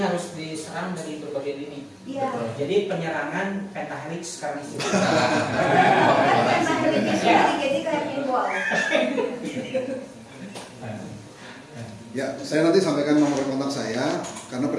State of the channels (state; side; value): identical; both; correlation 1.00